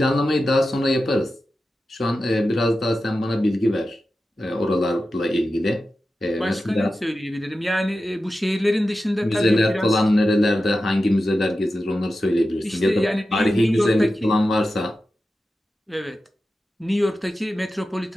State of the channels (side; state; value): both; normal; correlation 0.92